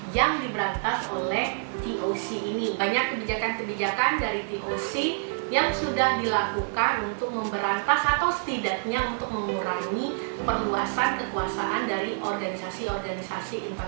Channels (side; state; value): left; silent; digital silence